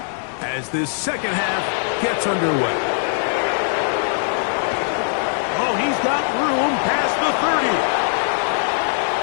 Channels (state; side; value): silent; right; digital silence